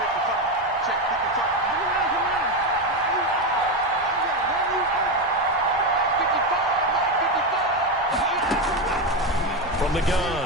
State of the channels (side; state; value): both; normal; correlation 0.12